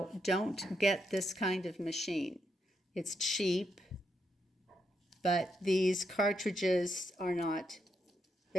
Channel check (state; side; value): normal; both; correlation 0.81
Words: don't get this kind of machine. It's cheap, but these cartridges are not,